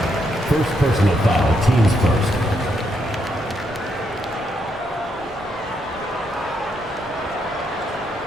First personal foul, teams first.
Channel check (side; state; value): both; normal; correlation 0.78